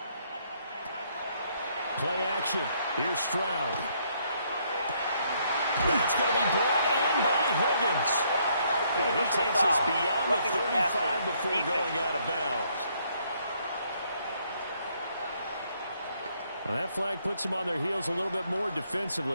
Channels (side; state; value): both; inverted; correlation -0.69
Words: Play action. Here's Stroud. That's going to be brought in by Higgins. And he takes us beyond the 35 before going out of bounds. Well, that flag puts them on their heels a little bit more